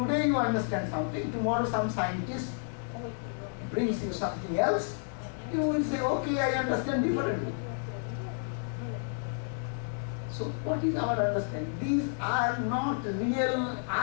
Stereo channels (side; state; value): right; silent; digital silence